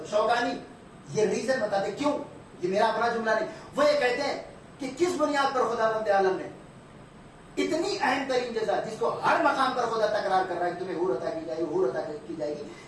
شوکانی یہ ریزن بتاتے, کیوں, یہ میرا اپنا جملہ نہیں, وہ یہ کہتے ہیں کہ کس بنیاد پر خداوند عالم نے اتنی اہم ترین جزا جس کو ہر مقام پر خدا تکرار کر رہا ہے کہ تمہیں حور عطا کی جائے گی, حور عطا کی جائے گی,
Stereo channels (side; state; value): both; identical; correlation 1.00